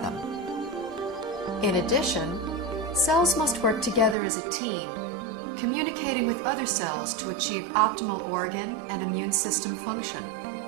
In addition, cells must work together as a team, communicating with other cells to achieve optimal organ and immune system function.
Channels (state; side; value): drops out; left; at 4.2 s